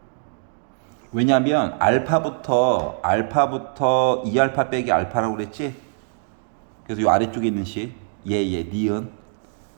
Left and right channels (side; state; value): left; silent; 64 dB below the other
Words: 왜냐면 알파부터 2알파 빼기 알파라고 그랬지? 그래서 요 아래쪽에 있는 식 니은